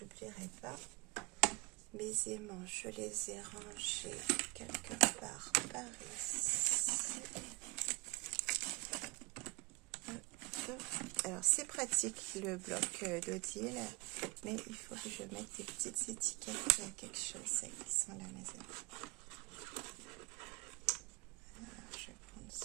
pas. Mes aimants, je les ai rangés quelque part par ici. Alors, c'est pratique le bloc d'Odile, mais il faut que je mette des petites étiquettes à quelque chose. Ça, qui sont là, mes amis. Alors, je vais prendre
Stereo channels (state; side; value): quieter; left; 27.7 dB